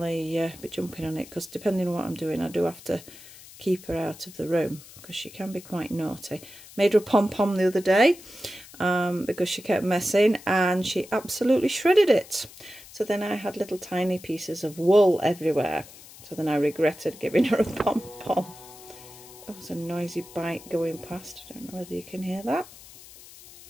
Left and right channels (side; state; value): left; noise; hiss, 19 dB below the sound